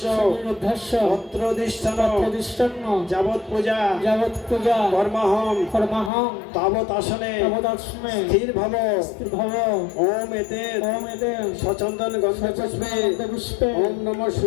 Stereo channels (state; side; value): drops out; right; at 6.1 s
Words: অত্রদিষ্ঠন যাবৎ পূজা কর্মহম তাবৎ আসনে স্থির ভব। ওম এতে সচন্দন গন্ধ পুষ্পে ওম নমঃ